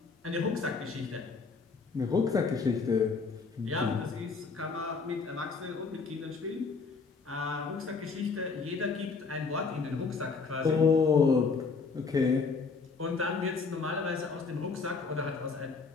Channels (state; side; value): quieter; right; 4.7 dB